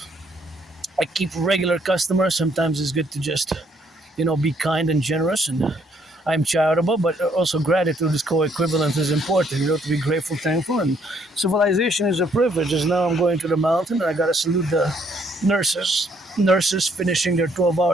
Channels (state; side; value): normal; both; correlation 0.68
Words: I keep regular customers, sometimes it's good to just, be kind and generous. And I'm charitable, but also gratitude is co-equivalent is important, to be grateful, thankful. And civilization is a privilege. As now I'm going to the mountain and I got to salute the nurses finishing their